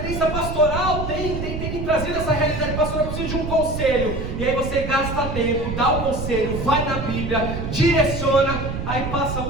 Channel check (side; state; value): right; noise; rumble, 5 dB below the sound